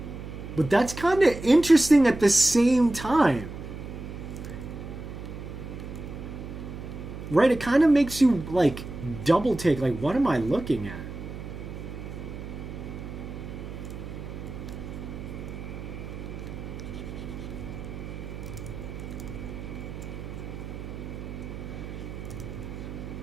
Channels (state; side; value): noise; right; hum, 9 dB below the sound